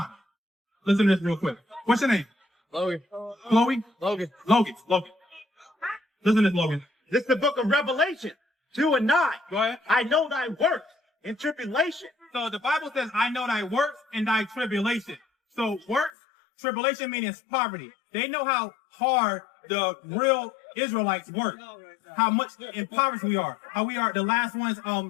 Listen to this real quick. What's your name? Logan. Chloe? Logan. Logan. Listen to this, Logan. This is the book of Revelation 2 and 9. Go ahead. I know thy works in tribulation. So the Bible says, I know thy works and thy tribulation. So works, tribulation means poverty. They know how hard the real Israelites work. How much impoverished we are. How we are the last ones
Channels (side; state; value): right; drops out; at 16.1 s